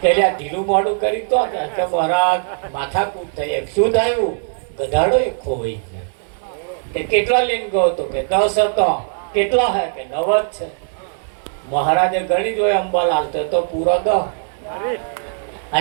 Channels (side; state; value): left; silent; digital silence